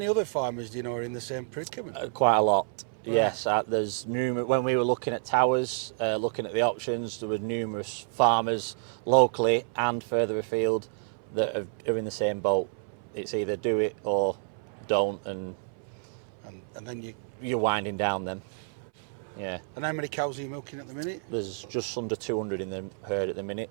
other farmers do you know are in the same predicament? Quite a lot. Right. Yes, there's numerous. When we were looking at towers, looking at the options, there were numerous farmers locally and further afield that are in the same boat. It's either do it or don't, and then you're winding down them. Yeah. And how many cows are you milking at the minute? There's just under 200 in the herd at the minute,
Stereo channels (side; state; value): left; silent; 58 dB below the other